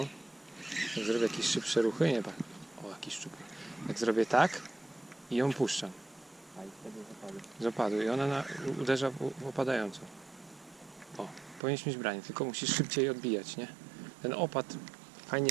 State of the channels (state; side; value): drops out; left; at 11.6 s